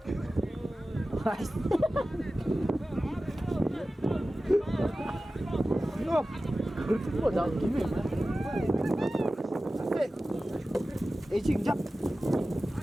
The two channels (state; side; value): normal; both; correlation 0.95